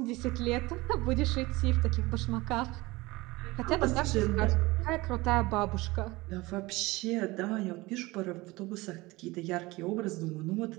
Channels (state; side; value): quieter; left; 21.3 dB